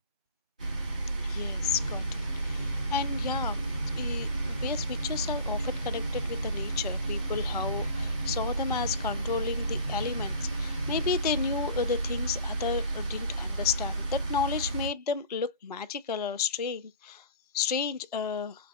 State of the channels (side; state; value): both; inverted; correlation -0.41